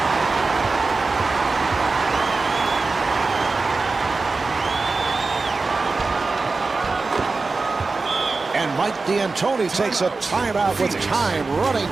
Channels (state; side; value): quieter; left; 3.9 dB